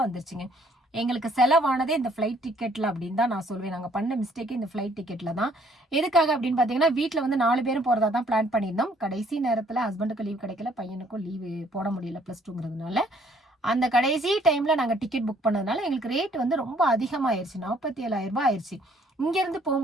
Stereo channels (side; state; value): both; normal; correlation 0.63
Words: வந்துருச்சுங்க. எங்களுக்கு செலவானதே இந்த ஃப்ளைட் டிக்கெட்ல அப்படின்னு தான் நான் சொல்வேன். நாங்கள் பண்ண மிஸ்டேக்கு இந்த ஃப்ளைட் டிக்கெட்ல தான். எதுக்காக அப்படின்னு பார்த்தீங்கன்னா, வீட்டில் வந்து 4 பேரும் போறதா தான் பிளான் பண்ணியிருந்தோம். கடைசி நேரத்தில் ஹஸ்பண்டுக்கு லீவ் கிடைக்கல, பையனுக்கும் லீவு போட முடியல +2ங்கிறதுனால. அந்த கடைசி டைம்ல நாங்கள் டிக்கெட் புக் பண்ணதுனால எங்களுக்கு ரேட் வந்து ரொம்ப அதிகமாயிருச்சு. 47,000 ரூபாய் ஆயிடுச்சு. இங்கேருந்து